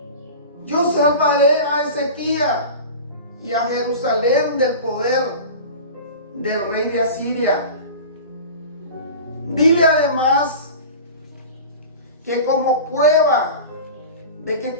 Yo salvaré a Ezequías y a Jerusalén del poder del rey de Asiria. Dile además que como prueba de que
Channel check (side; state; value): both; inverted; correlation -0.34